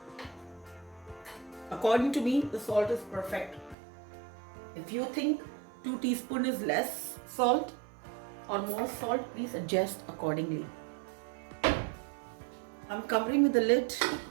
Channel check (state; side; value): drops out; left; at 3.8 s